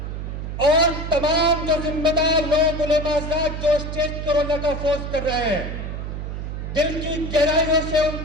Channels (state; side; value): noise; right; hum, 6 dB below the sound